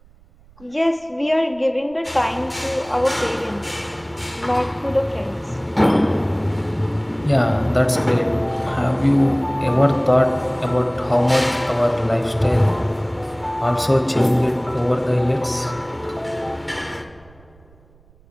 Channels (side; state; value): right; noise; rumble, 28 dB below the sound